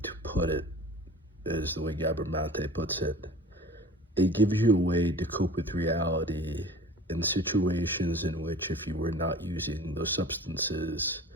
to put it is the way Gabor Mate puts it. It gives you a way to cope with reality in situations in which if you were not using those substances,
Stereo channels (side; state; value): both; normal; correlation 0.42